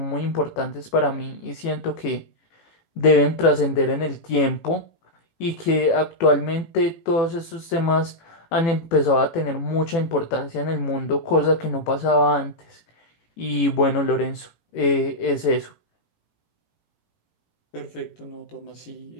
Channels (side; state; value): right; late; 18 ms